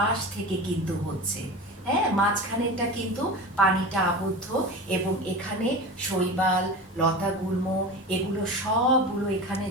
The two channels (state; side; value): normal; both; correlation 0.30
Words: থেকে কিন্তু হচ্ছে। হ্যাঁ, মাঝখানেরটা কিন্তু পানিটা আবদ্ধ এবং এখানে শৈবাল, লতাগুল্ম এগুলো সবগুলো এখানে